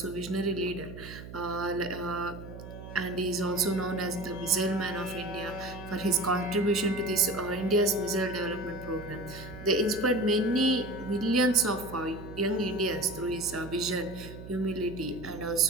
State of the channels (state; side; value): noise; right; hum, 13 dB below the sound